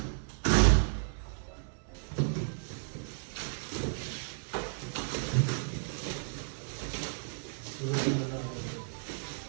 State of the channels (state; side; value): silent; left; 55 dB below the other